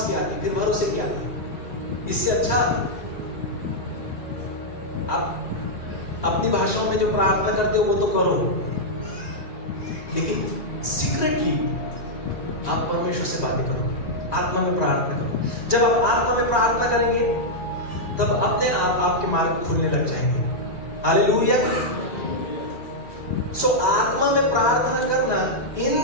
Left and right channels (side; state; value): right; late; 1.9 ms